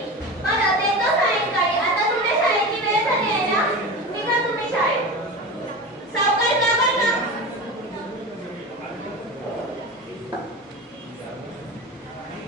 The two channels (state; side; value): normal; both; correlation 0.28